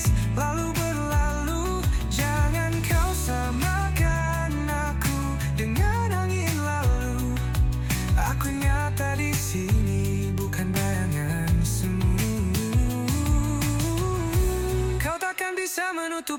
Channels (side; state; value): both; identical; correlation 1.00